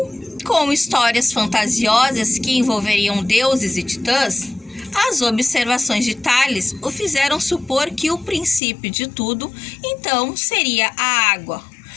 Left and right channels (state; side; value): drops out; right; at 8.6 s